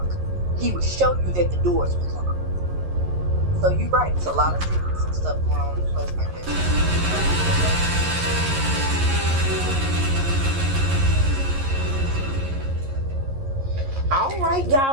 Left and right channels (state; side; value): late; left; 11 ms